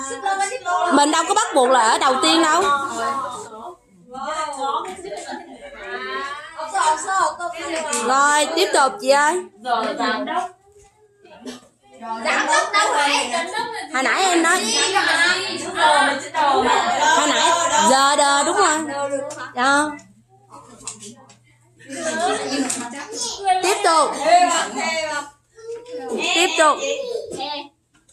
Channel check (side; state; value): both; identical; correlation 1.00